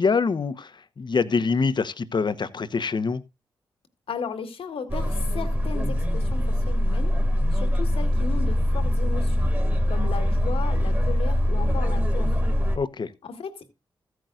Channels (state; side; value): normal; both; correlation 0.90